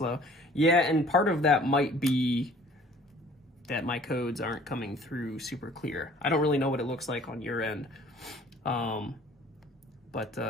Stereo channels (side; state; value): both; normal; correlation 0.52